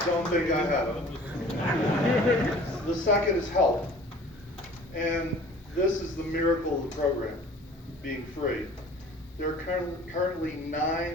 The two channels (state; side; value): normal; both; correlation 0.48